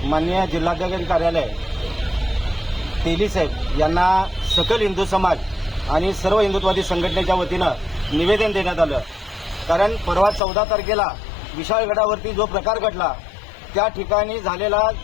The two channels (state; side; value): drops out; right; at 10.4 s